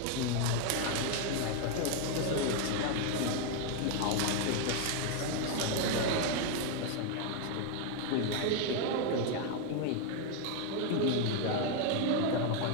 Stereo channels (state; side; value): different; both; correlation 0.01